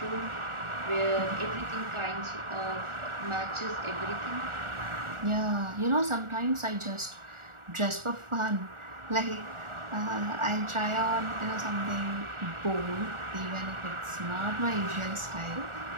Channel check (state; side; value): late; left; 1.4 ms